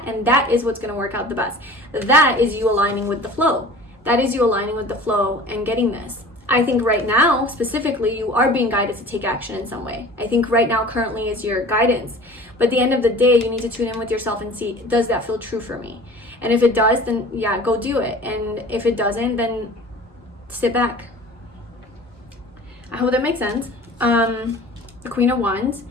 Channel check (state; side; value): normal; both; correlation 0.43